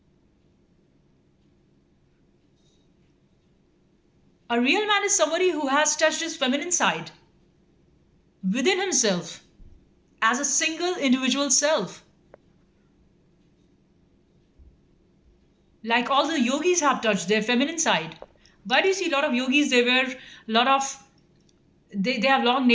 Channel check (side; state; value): both; identical; correlation 1.00